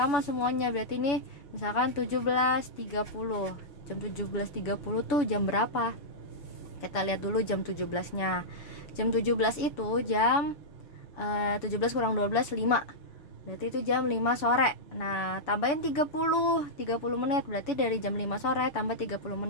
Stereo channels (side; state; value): right; late; 7.0 ms